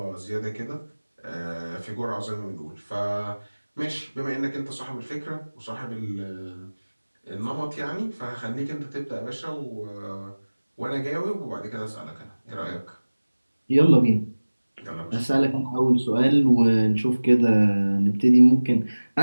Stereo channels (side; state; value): both; inverted; correlation -1.00